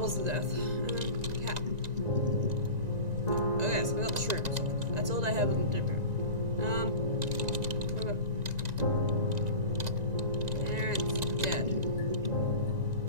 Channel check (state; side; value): late; left; 1.9 ms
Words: the death. Cap. Okay, so we got the shrooms. That's all they have in the different. What about parents dead?